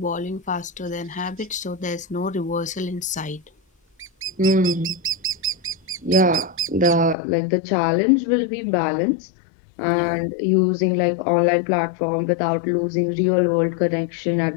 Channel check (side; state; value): right; drops out; at 7.2 s